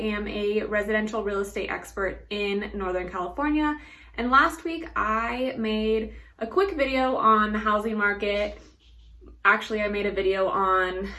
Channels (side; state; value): both; identical; correlation 1.00